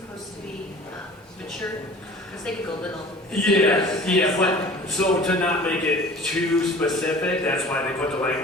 to be mature? Because they could go little. Yeah, but so to not make it too specific, that's why they put the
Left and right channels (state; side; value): normal; both; correlation 0.45